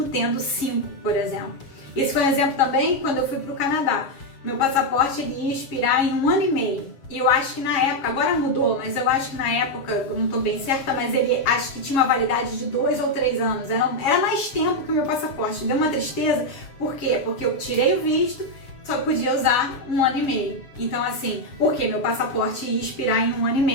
tendo 5, por exemplo. Esse foi um exemplo também quando eu fui para o Canadá. Meu passaporte ele ia expirar em 1 ano e meio. E eu acho que na época, agora mudou, mas eu acho que na época, eu não estou bem certa, mas ele acho que tinha uma validade de 2 ou 3 anos. Era mais tempo que o meu passaporte. Deu uma tristeza. Por quê? Porque eu tirei o visto, só podia usar 1 ano e meio. Então, assim, porque meu passaporte ia expirar em 1 ano e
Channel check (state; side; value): late; right; 7.4 ms